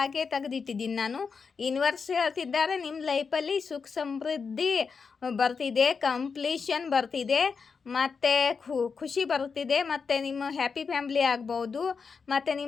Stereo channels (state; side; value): quieter; right; 5.4 dB